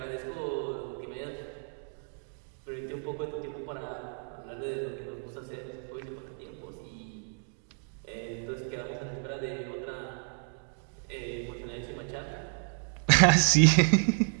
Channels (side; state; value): left; silent; 57 dB below the other